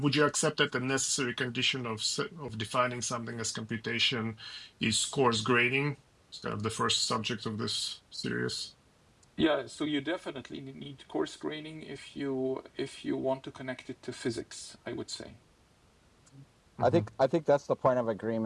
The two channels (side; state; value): both; identical; correlation 1.00